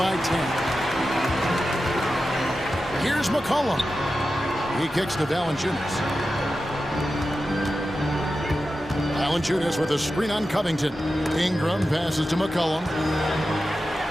10. Here's McCollum. He kicks to Valanciunas. Valanciunas with a screen on Covington. Ingram passes to McCollum.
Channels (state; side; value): normal; both; correlation 0.92